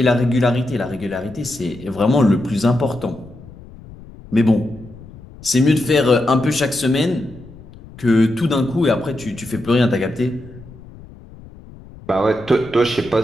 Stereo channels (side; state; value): left; noise; rumble, 19 dB below the sound